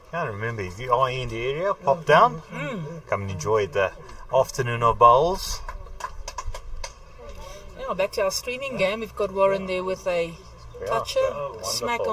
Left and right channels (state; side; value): identical; both; correlation 1.00